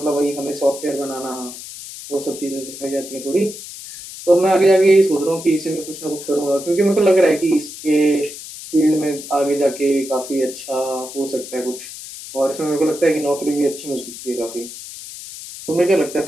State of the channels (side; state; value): left; noise; hiss, 12 dB below the sound